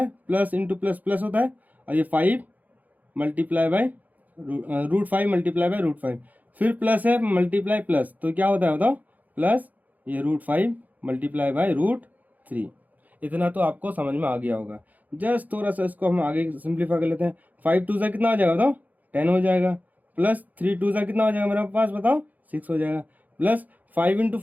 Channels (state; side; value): late; left; 0.080 ms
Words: प्लस इंटू प्लस प्लस होता है, और ये 5 × √5 फिर प्लस है मल्टीप्लाई प्लस, तो क्या होता है बताओ प्लस ये √5 × √3। इतना तो आपको समझ में आ गया होगा। जस्ट थोड़ा सा इसको हम आगे सिंप्लीफाई कर लेते हैं। 5 टू ज़ा कितना हो जाएगा बताओ, 10 हो जाएगा, प्लस 3 टू ज़ा कितना हो जाएगा मेरे पास बताओ, 6 हो जाएगा, प्लस 5 इंटू